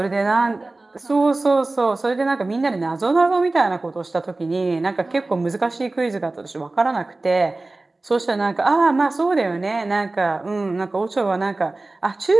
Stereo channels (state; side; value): quieter; left; 3.1 dB